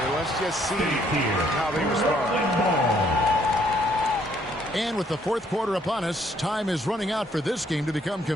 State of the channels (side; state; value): both; normal; correlation 0.66